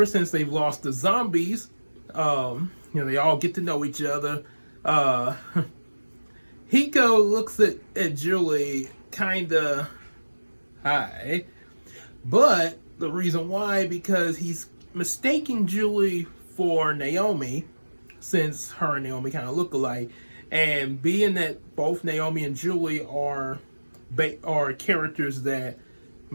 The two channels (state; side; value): inverted; both; correlation -1.00